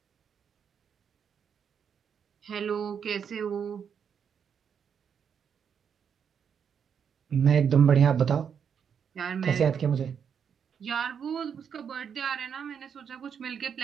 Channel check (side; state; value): left; quieter; 7.4 dB